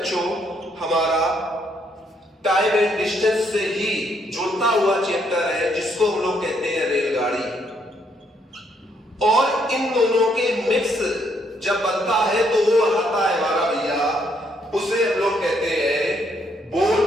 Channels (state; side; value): normal; both; correlation 0.72